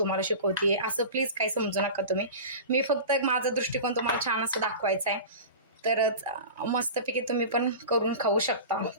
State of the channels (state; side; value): inverted; both; correlation -0.32